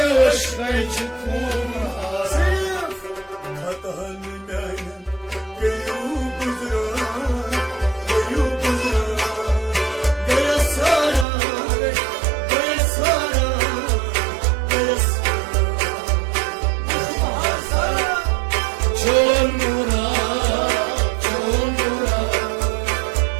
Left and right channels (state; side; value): drops out; left; at 11.2 s